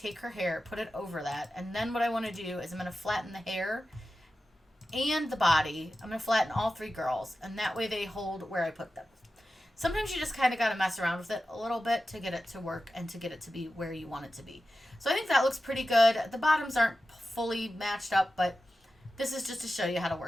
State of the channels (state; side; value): normal; both; correlation 0.93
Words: her hair, put it over that. And then what I want to do is I'm going to flatten the hair and the body. I'm going to flatten all three girls. And that way they hold where I put them. Sometimes you just kind of got to mess around with it a little bit to get it to work and to get it to be where you want it to be. So I think that looks pretty good. The bottoms aren't fully matched up, but this is just to show you how to